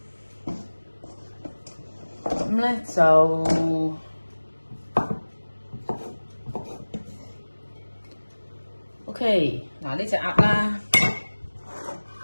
咁咧就OK， 嗱呢隻鴨啦，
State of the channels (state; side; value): inverted; both; correlation -1.00